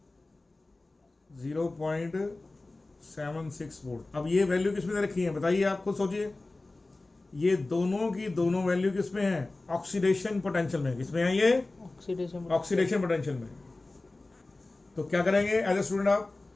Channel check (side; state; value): right; quieter; 3.1 dB